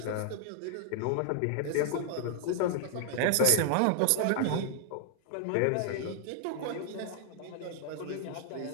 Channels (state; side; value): different; both; correlation 0.00